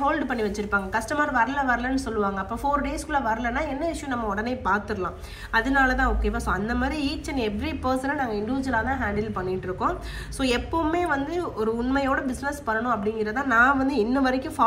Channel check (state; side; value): identical; both; correlation 1.00